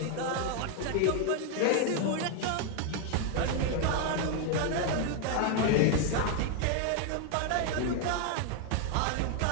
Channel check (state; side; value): different; both; correlation 0.01